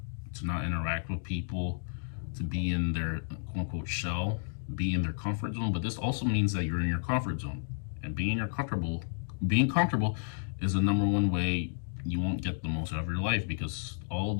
interact with people, to be in their quote unquote shell, be in their comfort zone. But this also means that you're in your comfort zone, and being comfortable is the number one way you won't get the most out of your life, because all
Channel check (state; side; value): silent; right; digital silence